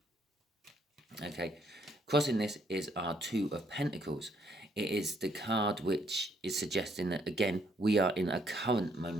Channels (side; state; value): both; normal; correlation 0.69